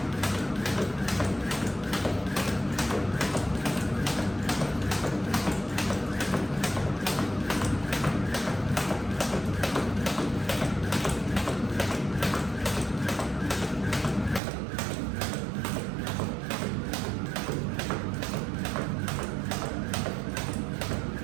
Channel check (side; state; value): left; drops out; at 14.4 s